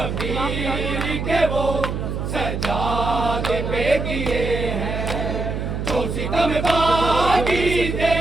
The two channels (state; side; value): noise; right; hum, 3 dB below the sound